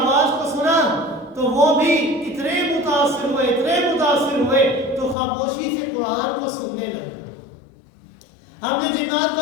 کو سنا تو وہ بھی اتنے متاثر ہوئے تو خاموشی سے قرآن کو سننے لگے۔ ہم نے جنات کا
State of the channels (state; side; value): drops out; right; at 5.2 s